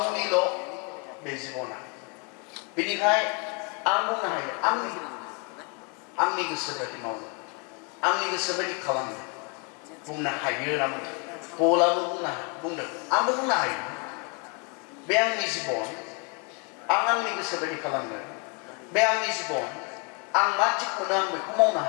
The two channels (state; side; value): quieter; right; 34.6 dB